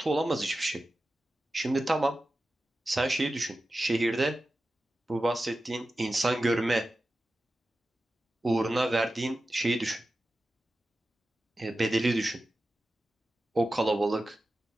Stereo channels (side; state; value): both; normal; correlation 0.93